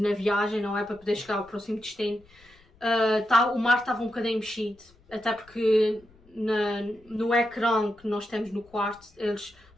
na viagem, não é? Para poder chegar ao próximo destino. O mar estava um bocadinho mexido, até porque no ecrã que nós temos no quarto, eles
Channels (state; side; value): noise; left; rumble, 29 dB below the sound